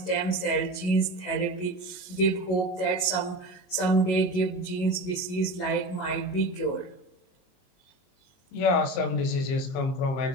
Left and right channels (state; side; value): late; right; 22 ms